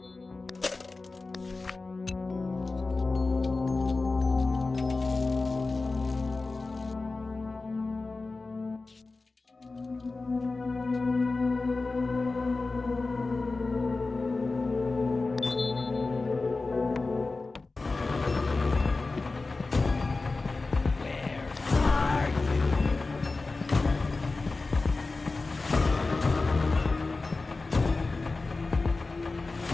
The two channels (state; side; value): quieter; right; 3.6 dB